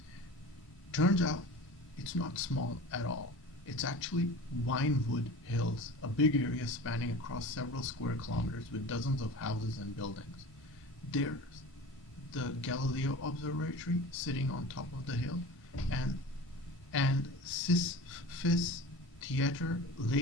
Turns out it's not small at all. It's actually Winewood Hills, a big area spanning across several square kilometers with dozens of houses and buildings. There's the Galileo Observatory sitting on top of the hill, and Sisyphus Theatre,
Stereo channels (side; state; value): both; normal; correlation 0.35